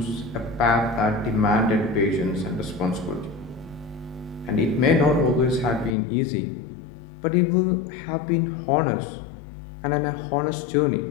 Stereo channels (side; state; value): right; drops out; at 6.0 s